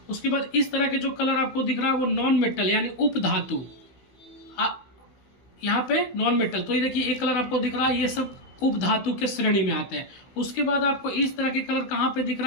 उसके बाद इस तरह के जो कलर आपको दिख रहा है वो नॉन मेटल यानी उप धातु, यहाँ पे नॉन मेटल। तो ये देखिए एक कलर आपको दिख रहा है, ये सब उप धातु के श्रेणी में आते हैं। उसके बाद आपको इस तरह के कलर कहाँ पे दिख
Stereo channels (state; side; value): late; right; 16 ms